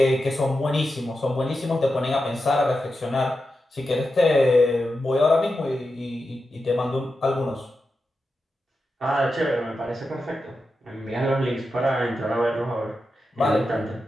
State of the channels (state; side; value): normal; both; correlation 0.89